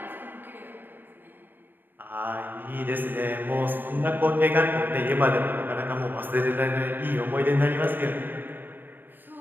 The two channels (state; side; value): late; left; 0.093 ms